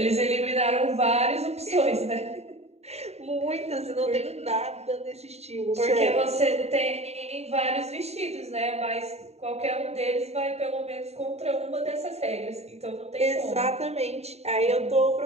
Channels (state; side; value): late; left; 0.31 ms